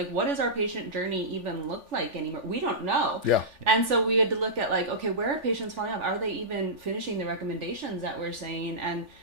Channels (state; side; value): late; left; 3.4 ms